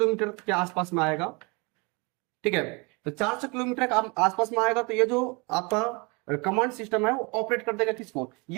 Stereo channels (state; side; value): quieter; left; 29.4 dB